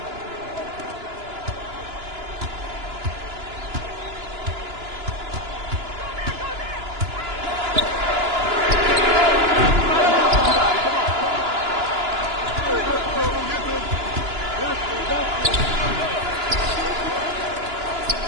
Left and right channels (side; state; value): left; late; 2.9 ms